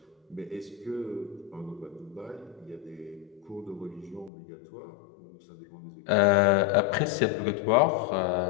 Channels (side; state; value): right; drops out; at 4.3 s